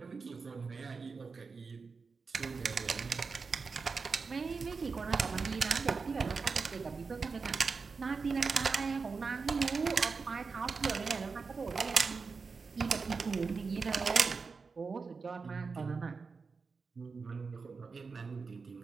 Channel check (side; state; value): left; quieter; 4.8 dB